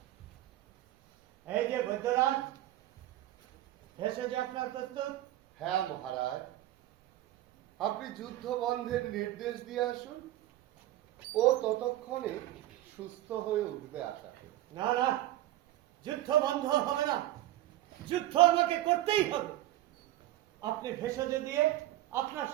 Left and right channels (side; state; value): left; quieter; 14.9 dB